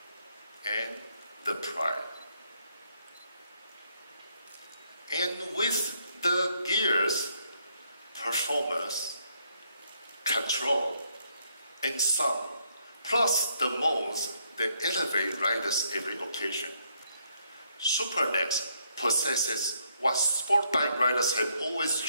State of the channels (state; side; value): inverted; both; correlation -0.72